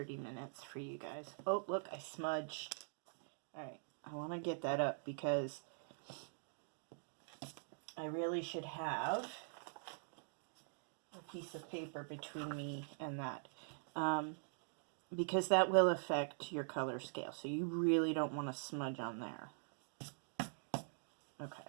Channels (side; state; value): left; silent; digital silence